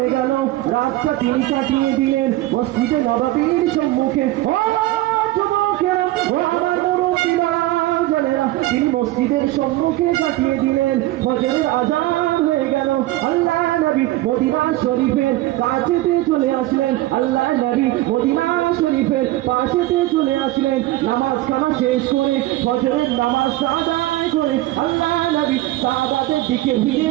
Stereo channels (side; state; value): left; quieter; 17.0 dB